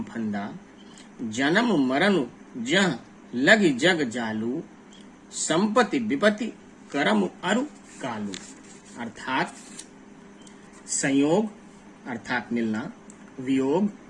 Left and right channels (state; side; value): identical; both; correlation 1.00